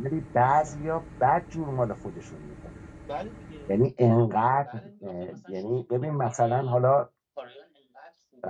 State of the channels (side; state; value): both; identical; correlation 1.00